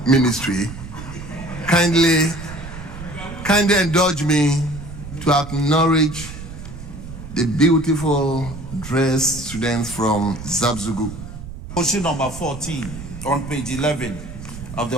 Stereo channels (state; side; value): noise; right; rumble, 12 dB below the sound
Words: kindly indulge me to acknowledge the beautiful dressed students from Zabzugu. Motion number 14 on page 11 of the